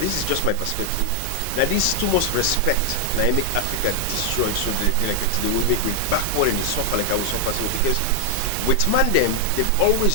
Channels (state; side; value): different; both; correlation 0.00